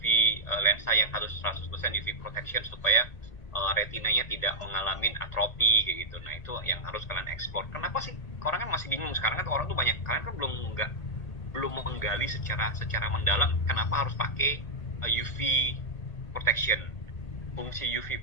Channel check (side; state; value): right; late; 1.8 ms